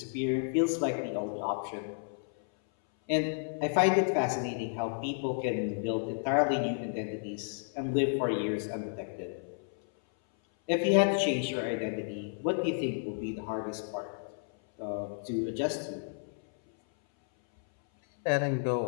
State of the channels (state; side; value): silent; right; 57 dB below the other